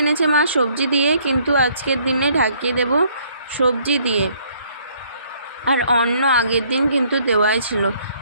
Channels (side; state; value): both; inverted; correlation -0.63